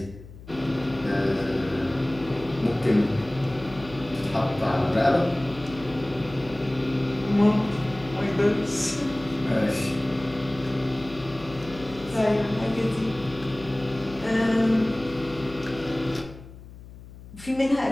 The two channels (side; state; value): left; noise; hum, 17 dB below the sound